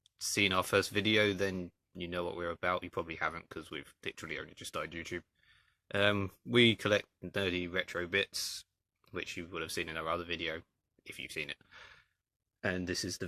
seen our first video, then you know what we're about. You probably haven't because we've literally only just started YouTube. We collect nerdy retro bits, which you would have seen in our other video, if you've seen it. And this is the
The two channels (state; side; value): identical; both; correlation 1.00